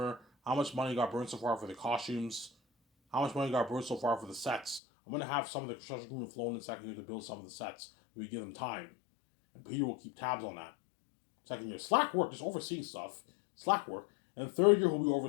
how much money got burned so far for the costumes, how much money got burned so far for the sets. I'm going to have some of the construction crew flown in second year to build some of the sets. We give them time. And Peter will keep tabs on that. Second year, Slack work, just overseeing stuff. Slack work. And third year, he'll be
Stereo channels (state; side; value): drops out; right; at 4.8 s